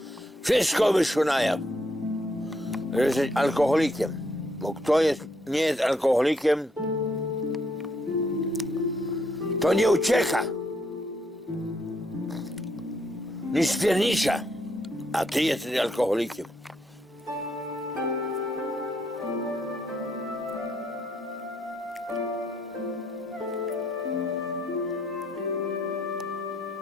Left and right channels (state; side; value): normal; both; correlation 0.74